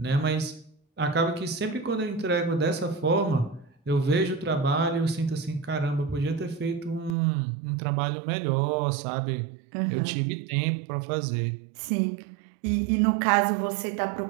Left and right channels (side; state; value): left; drops out; at 7.2 s